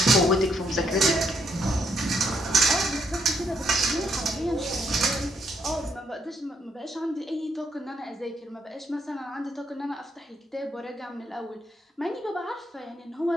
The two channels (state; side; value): normal; both; correlation 0.74